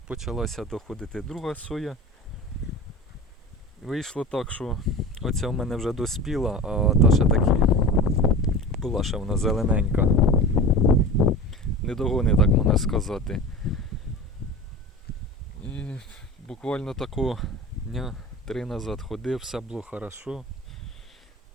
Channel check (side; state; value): both; normal; correlation 0.33